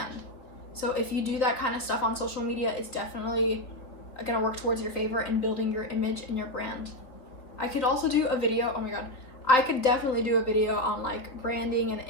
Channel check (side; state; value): right; late; 3.9 ms